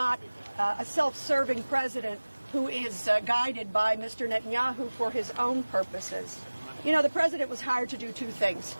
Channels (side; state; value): both; inverted; correlation -1.00